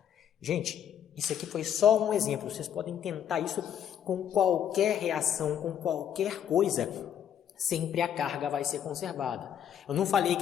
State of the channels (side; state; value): right; quieter; 9.4 dB